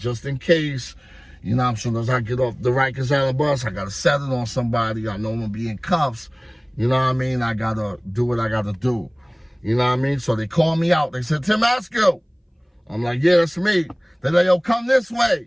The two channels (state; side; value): identical; both; correlation 1.00